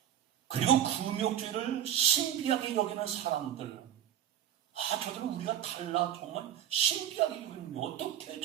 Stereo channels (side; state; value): left; quieter; 10.8 dB